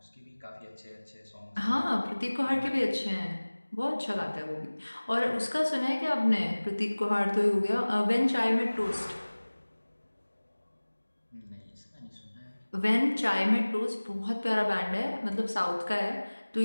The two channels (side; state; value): both; inverted; correlation -1.00